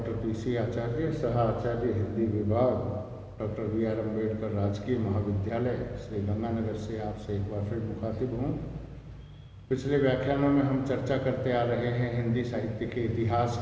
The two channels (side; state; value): both; identical; correlation 1.00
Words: PC आचार्य, सह आचार्य हिंदी विभाग, डॉक्टर बी.आर. अम्बेडकर राजकीय महाविद्यालय, श्री गंगानगर से आपसे एक बार फिर मुखातिब हूँ। पिछले व्याख्यानों में हम चर्चा करते आ रहे हैं हिंदी साहित्य के इतिहास